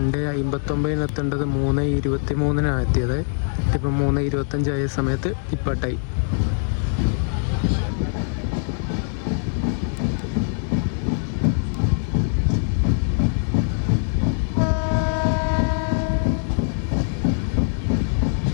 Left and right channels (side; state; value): right; silent; digital silence